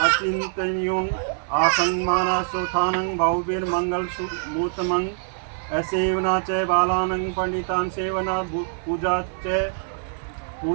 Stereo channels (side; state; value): left; silent; 62 dB below the other